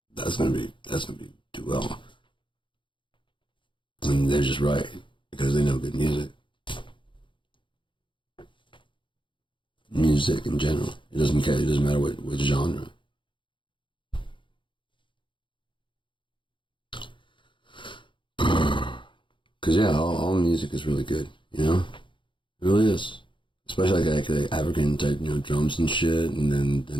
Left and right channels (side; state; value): right; late; 0.24 ms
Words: that's gonna be do well. And they're just right, because they know good music. Music in general. It doesn't care, it doesn't matter what genre. Because, yeah, all music is really good, you know? It really is. Especially like African type, you know, drums and shit, and then the